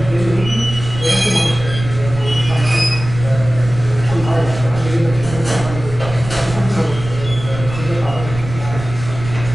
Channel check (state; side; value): noise; right; rumble, 11 dB below the sound